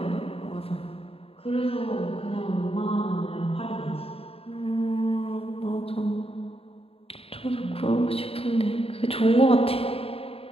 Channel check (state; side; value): late; right; 0.28 ms